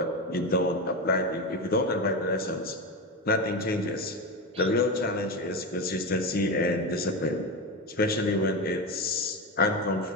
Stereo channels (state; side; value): normal; both; correlation 0.17